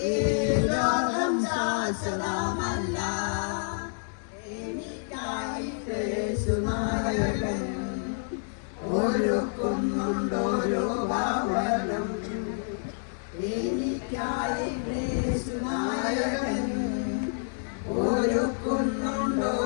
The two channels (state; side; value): silent; right; 59 dB below the other